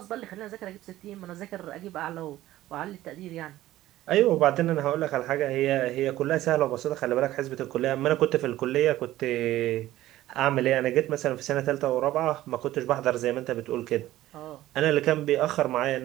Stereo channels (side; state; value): left; quieter; 15.0 dB